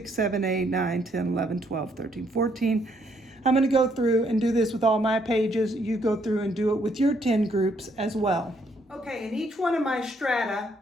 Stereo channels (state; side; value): normal; both; correlation 0.70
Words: 7, 8, 9, 10, 11, 12, 13, 14. I'm going to go through and do this with all my pages. You go through and do it with your 10 groups as well. Okay, in each one of my strata,